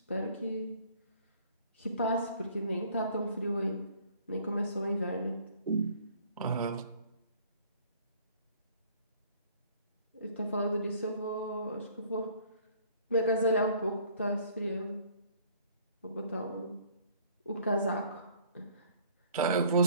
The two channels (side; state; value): both; inverted; correlation -0.56